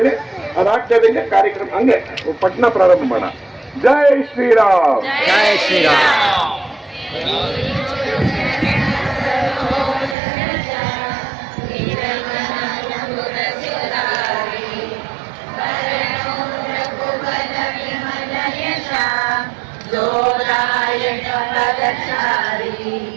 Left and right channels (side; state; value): left; drops out; at 10.2 s